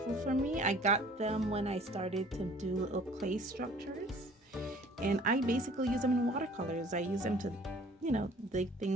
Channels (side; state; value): both; normal; correlation 0.52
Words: for me. I got them when I started to do little clay structures, and I basically use them in watercolors. I use them to, you know, dig